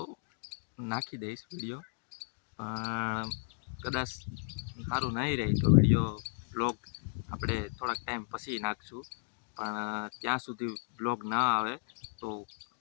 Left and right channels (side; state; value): right; silent; digital silence